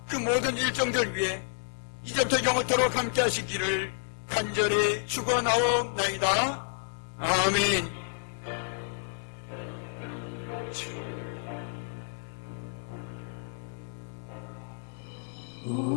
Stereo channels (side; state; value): right; silent; 58 dB below the other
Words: 그 모든 일정들 위에 이제부터 영원토록 함께 하시기를 간절히 축원하옵나이다. 아멘.